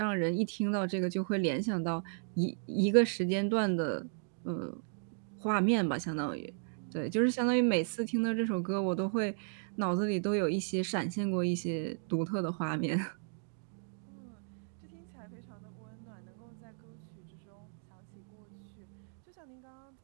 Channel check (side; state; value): left; silent; digital silence